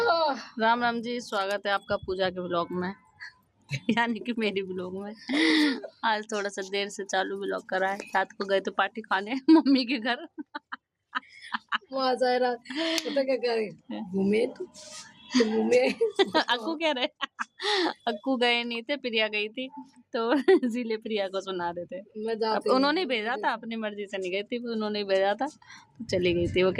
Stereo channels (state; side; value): identical; both; correlation 1.00